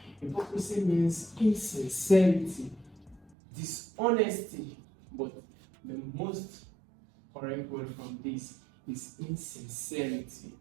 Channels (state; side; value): drops out; left; at 3.3 s